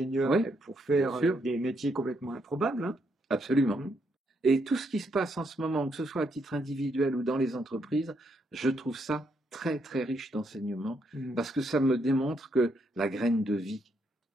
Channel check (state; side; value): normal; both; correlation 0.76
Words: pour faire des métiers complètement improbables. Hein. Absolument. Et tout ce qui se passe en ce moment, que ce soit à titre individuel ou dans les entreprises, je trouve ça très très riche d'enseignement, parce que ça me démontre que la graine de vie,